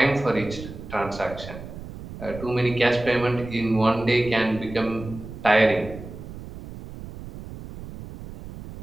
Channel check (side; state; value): right; noise; rumble, 13 dB below the sound